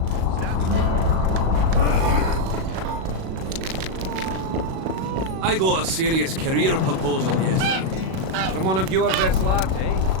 I got a serious career proposal yesterday. From one of your best lads, eh?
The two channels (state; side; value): late; left; 37 ms